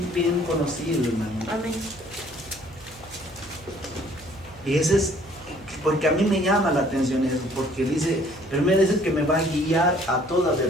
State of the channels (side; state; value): right; noise; hum, 22 dB below the sound